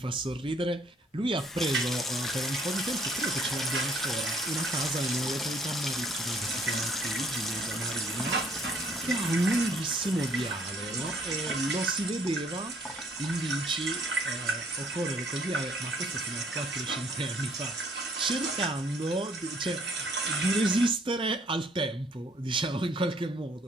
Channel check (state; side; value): normal; both; correlation 0.63